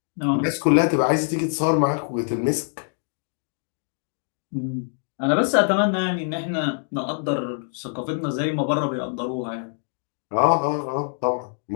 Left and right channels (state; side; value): silent; right; digital silence